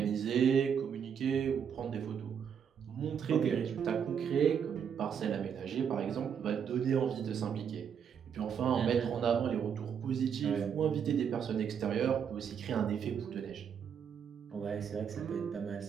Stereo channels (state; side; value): quieter; left; 7.6 dB